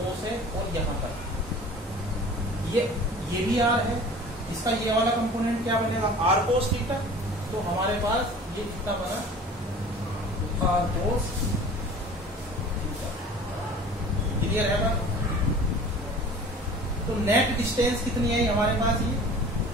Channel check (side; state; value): both; normal; correlation 0.43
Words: से और यहाँ तक ये भी r है। इसका ये वाला कंपोनेंट क्या बनेगा? r cos theta. तो हमारे पास ये कितना बना? r cos theta. क्लियर है बात? तो नेट डिस्टेंस कितनी है हमारे पास? ये